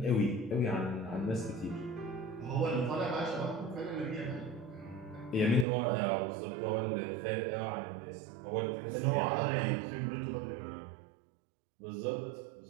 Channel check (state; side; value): drops out; left; at 5.7 s